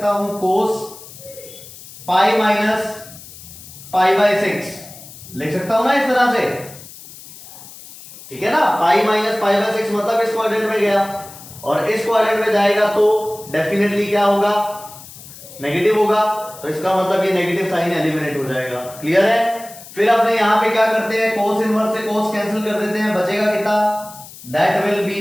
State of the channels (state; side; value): noise; left; hiss, 17 dB below the sound